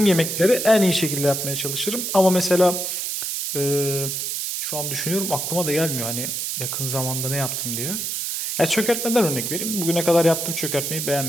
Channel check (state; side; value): noise; right; hiss, 2 dB below the sound